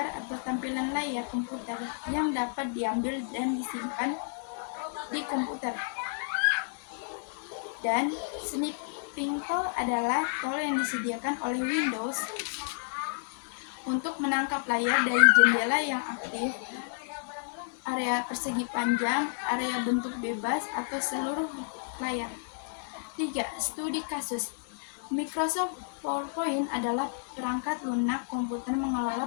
atau tampilan layar komputer yang dapat diambil dan disimpan di komputer. Dan snipping tool adalah tool yang disediakan oleh Windows untuk menangkap layar dari jendela yang aktif, area persegi panjang, area bentuk bebas, atau seluruh layar. 3. Studi kasus. Microsoft PowerPoint adalah perangkat lunak komputer mengelola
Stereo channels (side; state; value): right; silent; digital silence